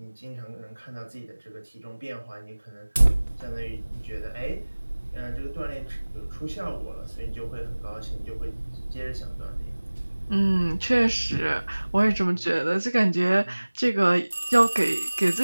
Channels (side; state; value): both; inverted; correlation -1.00